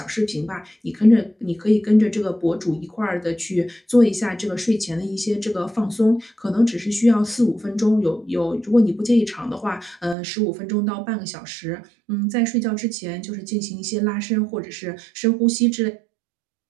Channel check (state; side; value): drops out; left; at 10.2 s